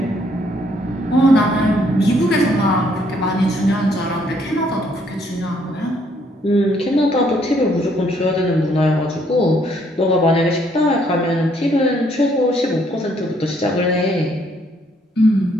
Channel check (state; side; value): normal; both; correlation 0.68